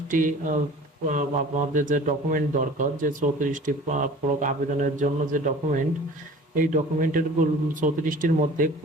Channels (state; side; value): normal; both; correlation 0.45